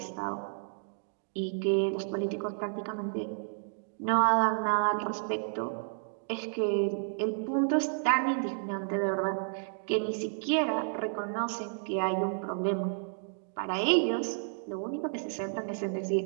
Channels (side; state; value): left; silent; digital silence